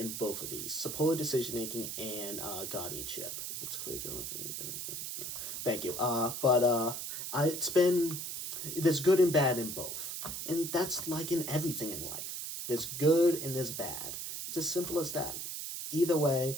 both of these: supported decision making and guardianship. It's clear, Jonathan. Thank you. There's good and bad in both, and that's like in everything in life. There's good and there's bad. It's as simple as that. Either way,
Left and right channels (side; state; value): right; noise; hiss, 5 dB below the sound